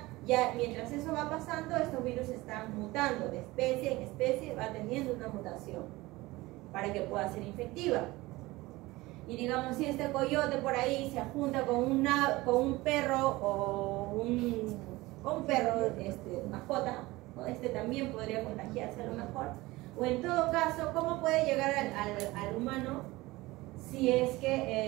Ya mientras eso va pasando, estos virus están mutando de especie en especie, va teniendo una mutación para que pueda ser infectiva. Y digamos, si este coyote por ahí se junta con un perro o un perro mascota, ¿no? También podría contagiarse a lo mejor. O en todo caso, ¿cómo puede llegar al humano si es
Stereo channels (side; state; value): left; quieter; 20.1 dB